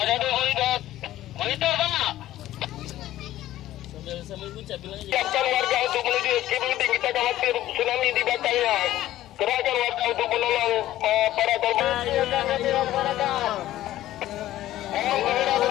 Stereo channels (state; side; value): quieter; right; 14.2 dB